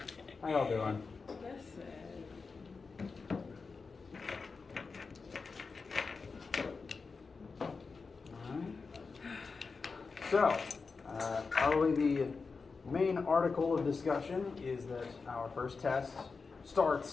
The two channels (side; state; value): right; quieter; 4.6 dB